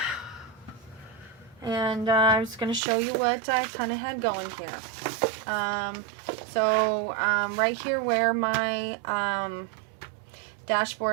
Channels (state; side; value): drops out; left; at 2.8 s